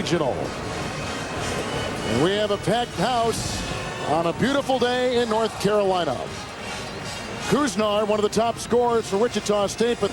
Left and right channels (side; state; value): both; identical; correlation 1.00